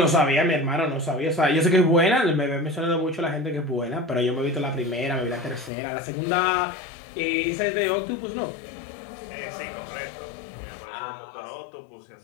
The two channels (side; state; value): right; drops out; at 5.7 s